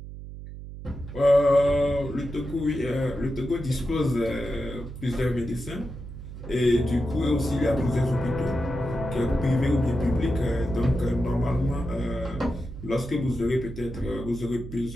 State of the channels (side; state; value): right; noise; hum, 11 dB below the sound